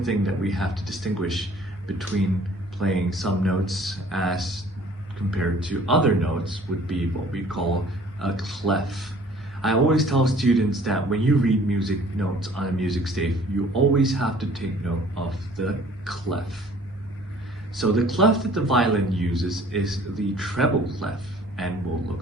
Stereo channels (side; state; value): both; normal; correlation 0.54